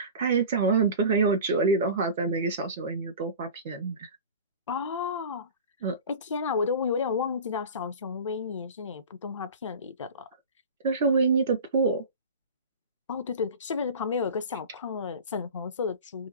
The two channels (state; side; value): inverted; both; correlation -0.34